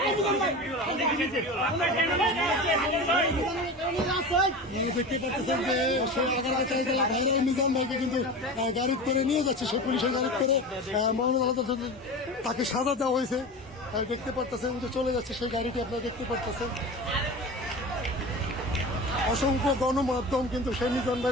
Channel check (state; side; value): normal; both; correlation 0.30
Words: দেখতে পাচ্ছেন যে সে এগারোটা চাইতলা ভাইরাল নিজাম ভাইকে কিন্তু গাড়ি করে নিয়ে যাচ্ছে, সে পুলিশের গাড়ি করে মহানগর আদালত তাকে সাজা দেওয়া হয়েছে। দেখতে পারতেছেন যে চলে যাচ্ছে সেই গাড়িটি, আপনারা দেখতে পারতেছেন। অসংখ্য গণমাধ্যম কিন্তু সেই মিজান